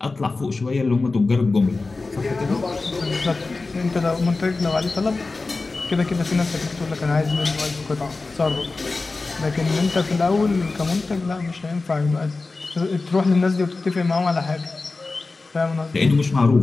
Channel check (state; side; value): quieter; right; 3.6 dB